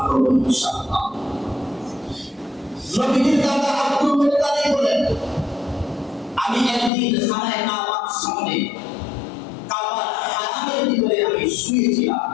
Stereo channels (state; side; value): drops out; right; at 6.9 s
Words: করব ইনশাআল্লাহ। নবীজির দাদা আব্দুল মুত্তালিব বলেন, আমি একদিন খানায়ে কাবার সামনে, কাবার হারামের ভিতরে আমি শুয়েছিলাম,